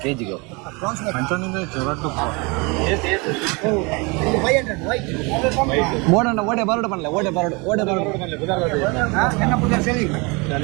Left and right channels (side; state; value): left; quieter; 28.4 dB